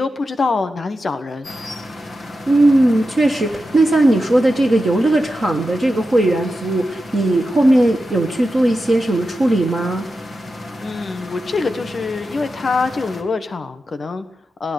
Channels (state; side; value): normal; both; correlation 0.90